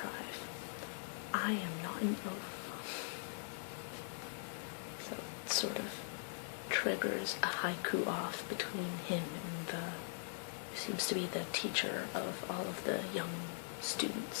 I am not an oaf. So it sort of triggers a haiku-off between him and who seems to be the teacher of all of the young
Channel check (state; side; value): silent; right; digital silence